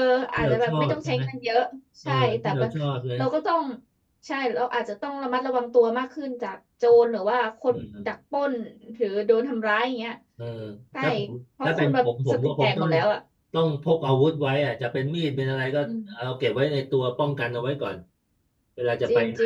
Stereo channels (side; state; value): both; identical; correlation 1.00